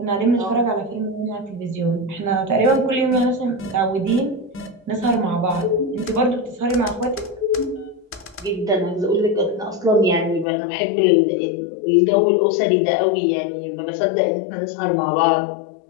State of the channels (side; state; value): right; drops out; at 10.5 s